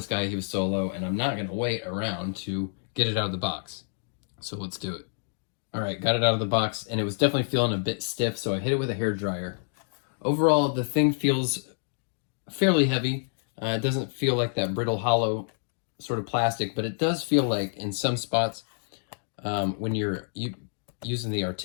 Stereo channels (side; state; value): right; silent; digital silence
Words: guy, he was solo, and I'm not going to wait around to get it out of the box. So let's do it. All right, got it out of the box, and it was definitely feeling a bit stiff, so I hit it with a hairdryer. Overall, the thing feels fairly heavy. It doesn't feel like that brittle, hollow sort of plastic, but it does feel like in some spots, when you're using the